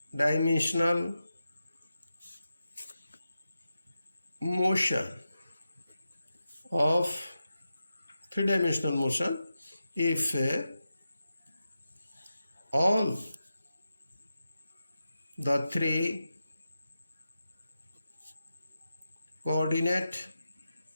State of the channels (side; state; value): both; inverted; correlation -0.91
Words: motion if all the three coordinate